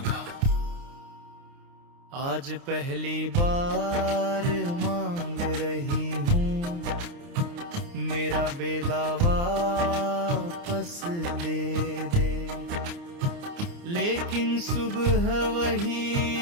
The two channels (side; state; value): left; late; 29 ms